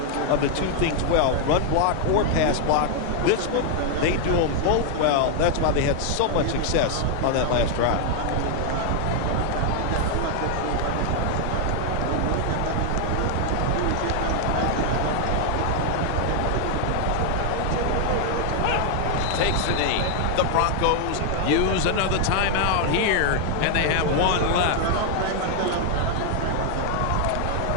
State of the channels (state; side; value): different; both; correlation 0.00